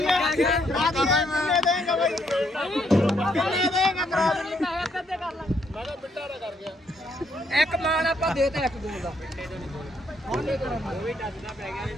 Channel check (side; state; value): both; normal; correlation 0.72